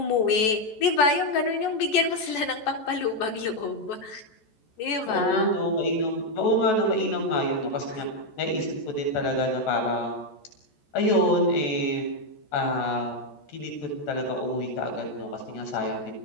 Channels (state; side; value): late; right; 14 ms